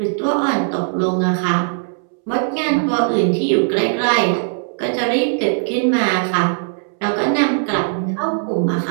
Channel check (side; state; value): left; silent; 67 dB below the other